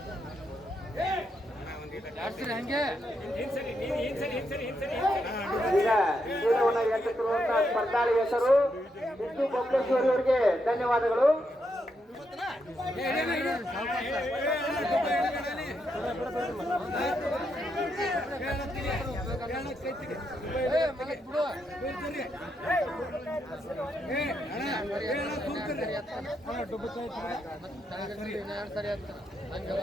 ಈಗ ಚೀಲವನ್ನು ಎತ್ತುತ್ತಿರುವಂತಹ ಸ್ಪರ್ಧಾಳಿ ಹೆಸರು ಸಿದ್ದು ಬೊಬ್ಲೇಶ್ವರಿ ಅವರಿಗೆ ಧನ್ಯವಾದಗಳು.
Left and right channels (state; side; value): normal; both; correlation 0.80